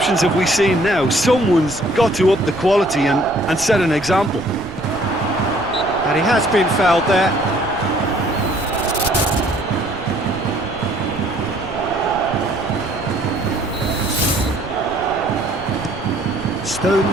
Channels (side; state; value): right; noise; rumble, 15 dB below the sound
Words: have we seen now? Someone's got to up the quality and set an example. And he has been fouled there.